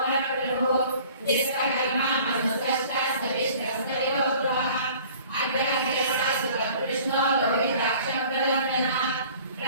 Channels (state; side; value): inverted; both; correlation -0.49